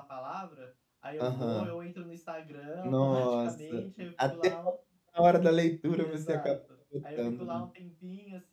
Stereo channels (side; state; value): both; identical; correlation 1.00